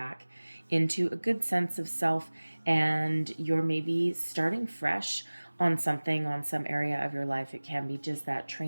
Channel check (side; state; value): both; inverted; correlation -1.00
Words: into a good sense of self, and you're maybe starting fresh on something, on some area of your life. It can be just that